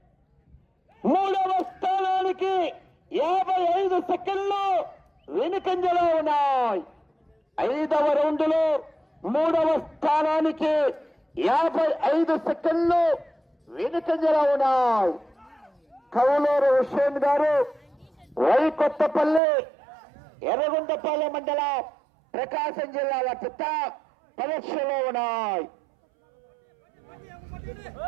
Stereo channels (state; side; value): drops out; left; at 19.4 s